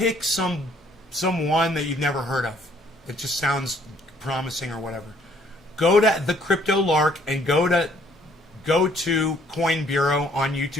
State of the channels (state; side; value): normal; both; correlation 0.63